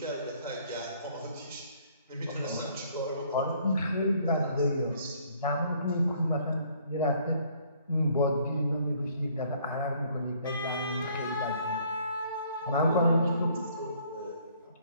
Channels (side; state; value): both; inverted; correlation -0.61